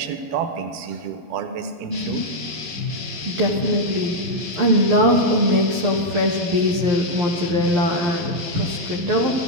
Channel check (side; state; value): left; late; 11 ms